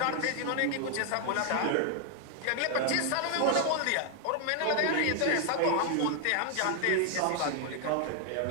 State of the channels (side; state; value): both; different; correlation 0.00